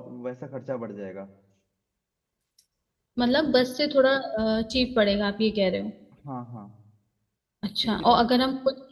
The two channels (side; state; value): both; identical; correlation 1.00